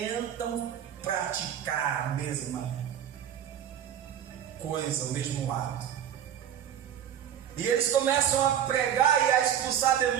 praticar a mesma coisa, o mesmo ato. E eles começam a pregar e a expulsar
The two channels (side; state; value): left; quieter; 9.8 dB